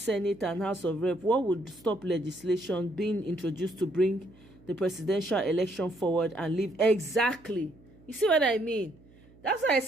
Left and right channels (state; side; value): noise; right; hum, 26 dB below the sound